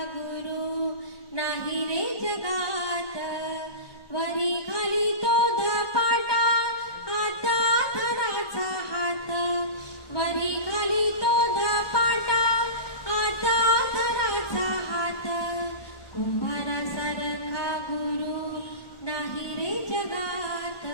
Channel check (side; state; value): right; late; 1.4 ms